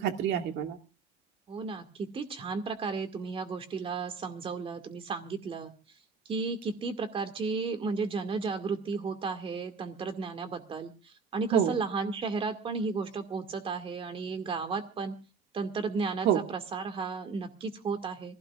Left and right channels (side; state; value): left; quieter; 5.3 dB